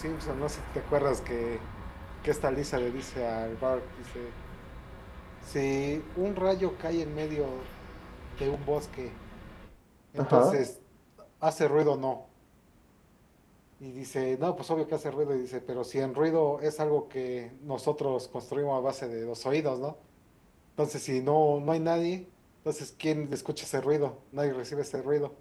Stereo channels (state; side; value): identical; both; correlation 1.00